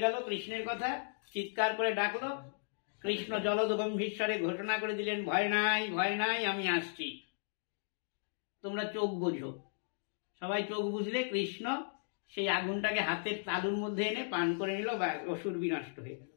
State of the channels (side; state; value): right; silent; digital silence